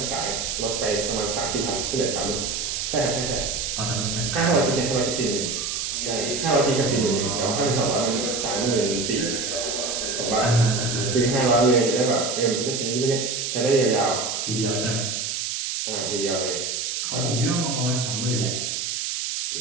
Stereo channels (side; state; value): right; noise; hiss, 2 dB below the sound